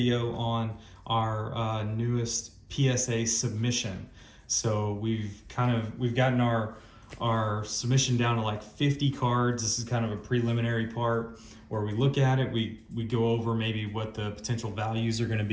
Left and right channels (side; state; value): both; identical; correlation 1.00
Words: on our newest PSA submission. So we've gotten our submission down to like 50 cards. This is kind of a preliminary part where we look at it. We go over maybe what the potential values are going to